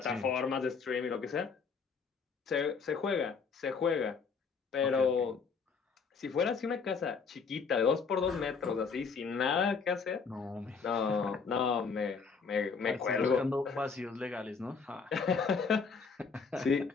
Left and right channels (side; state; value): right; quieter; 5.4 dB